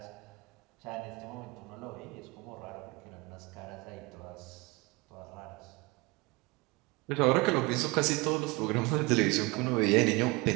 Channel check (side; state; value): left; quieter; 24.7 dB